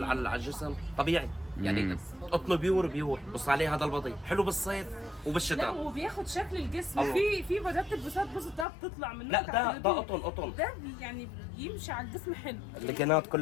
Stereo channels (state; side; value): drops out; right; at 8.7 s